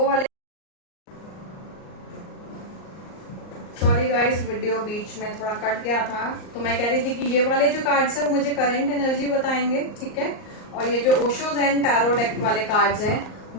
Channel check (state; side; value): late; right; 38 ms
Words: वाले, सॉरी गाइस वीडियो बीच में थोड़ा कट गया था, तो मैं कह रही थी कि ये वाले जो कार्ड्स हैं वो मुझे करंट एनर्जी बताएंगे। ठीक है, और ये जो ओशो ज़ेन टैरो डेक वाले कार्ड्स हैं